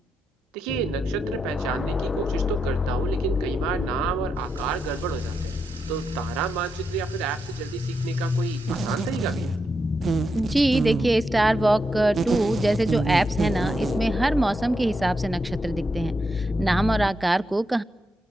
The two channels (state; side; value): normal; both; correlation 0.84